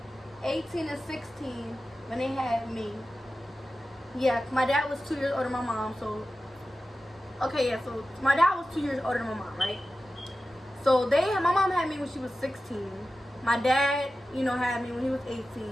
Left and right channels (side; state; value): both; normal; correlation 0.93